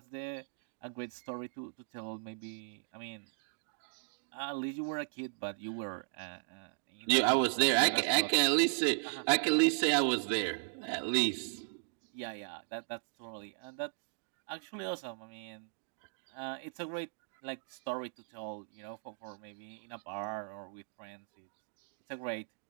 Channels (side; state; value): left; silent; digital silence